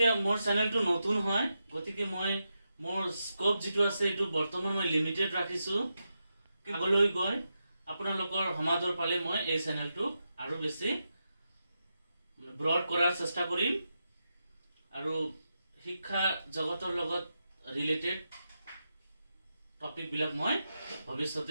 মোৰ চেনেলটো নতুন হয়, গতিকে মই মোৰ স্কোপ যিটো আছে এইটো বৰ্তমান মই লিমিটেড ৰাখিছোঁ। আগলৈ গৈ আপোনালোকৰ সমাদৰ পালে মই এই চেনেলটোক আৰু বেছি ব্ৰড কৰাৰ চেষ্টা কৰিম আৰু শিক্ষা জগতৰ লগত ৰিলেটেড টপিকবিলাক মই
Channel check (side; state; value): both; inverted; correlation -0.87